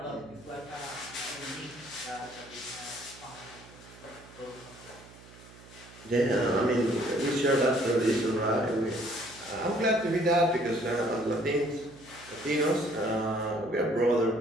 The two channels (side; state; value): right; noise; hum, 21 dB below the sound